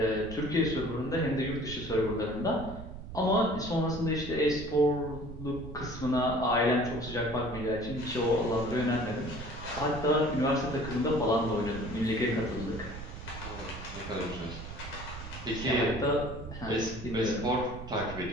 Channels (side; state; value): right; noise; rumble, 11 dB below the sound